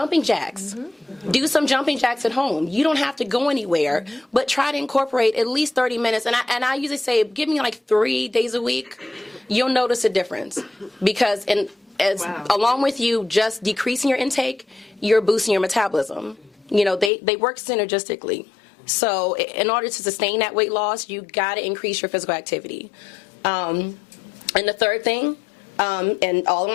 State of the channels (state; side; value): drops out; right; at 17.1 s